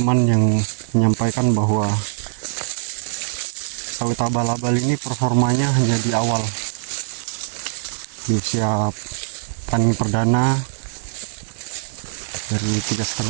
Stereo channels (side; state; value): left; silent; digital silence